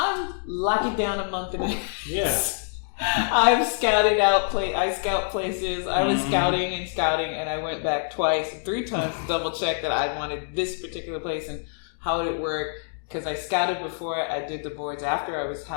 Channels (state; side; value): silent; right; digital silence